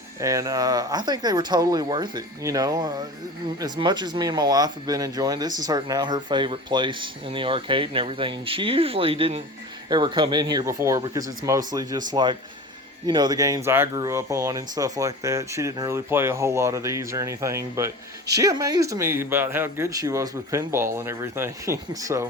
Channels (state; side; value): normal; both; correlation 0.34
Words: And I think they were totally worth it. You know, as much as me and my wife have been enjoying, this is now her favorite place in the arcade and everything. And she usually didn't ever come in here before because it's mostly just like, you know, the games I grew up on and stuff like that. She didn't really play a whole lot of these or anything, but she amazed me about how good she was with pinball and everything.